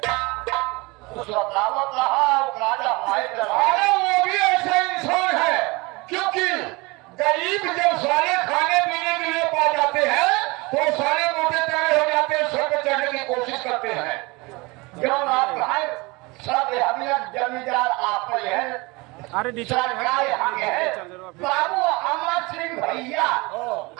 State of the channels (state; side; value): quieter; left; 25.1 dB